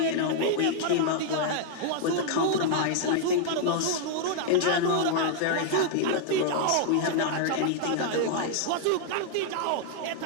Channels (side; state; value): both; different; correlation -0.01